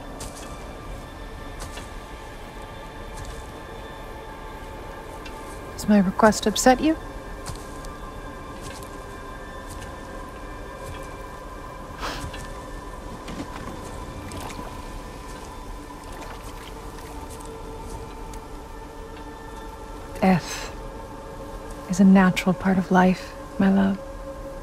Does my request upset you? Death is a natural part of life, my love.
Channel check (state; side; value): identical; both; correlation 1.00